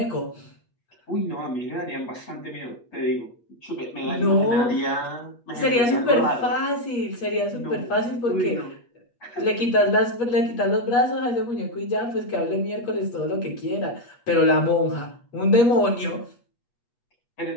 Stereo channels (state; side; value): late; right; 8.4 ms